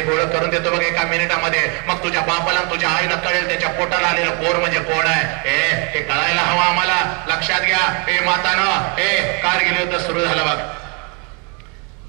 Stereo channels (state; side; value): quieter; left; 33.1 dB